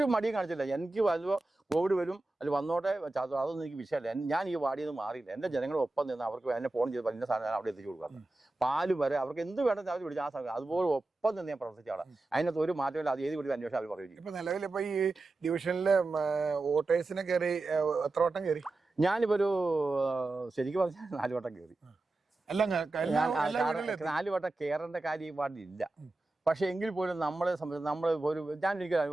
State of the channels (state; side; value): quieter; left; 3.0 dB